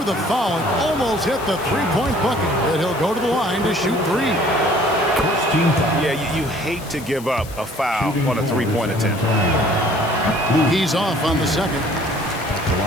the foul and almost hit the three-point bucket. And he'll go to the line to shoot 3. Yeah, you hate to give up a foul on a three-point attempt. He's off on the second.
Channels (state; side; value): noise; left; hiss, 18 dB below the sound